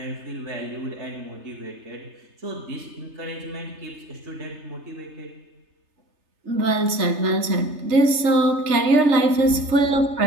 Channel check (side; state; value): left; late; 3.3 ms